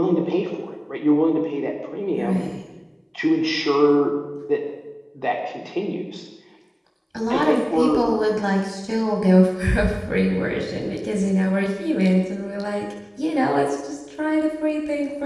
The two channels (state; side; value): identical; both; correlation 1.00